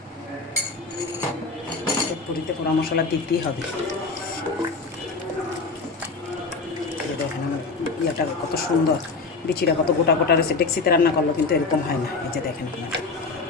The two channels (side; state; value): right; quieter; 4.1 dB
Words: পুরিতে পোড়া মশলা দিতেই হবে। দেখেন আমার ইয়েটা কত সুন্দর, বিচিটা কত গোটা গোটা রয়েছে। ডেক্সিতে রান্না করলো কিন্তু এরকম হয় না। এই যে দেখেন আপনারা,